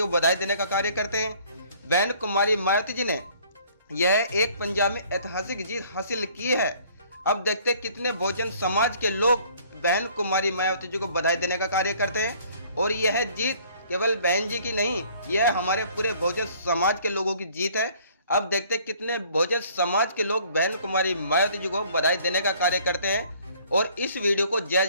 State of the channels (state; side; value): inverted; both; correlation -0.57